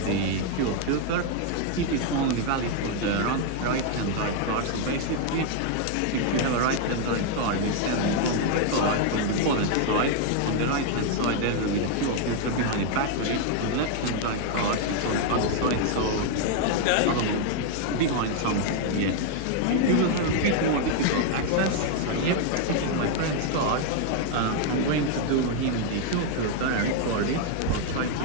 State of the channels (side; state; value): both; different; correlation 0.00